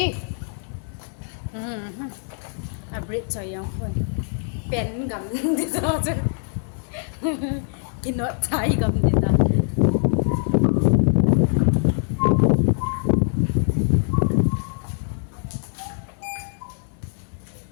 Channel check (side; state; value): right; silent; digital silence